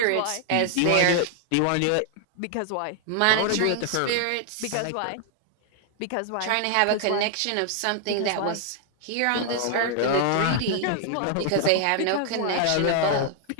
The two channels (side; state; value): both; different; correlation 0.00